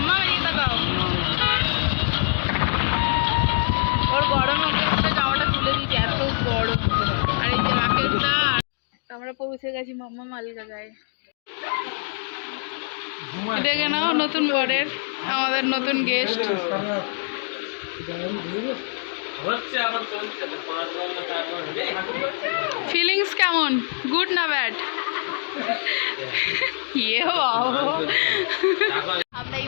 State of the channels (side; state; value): right; silent; 59 dB below the other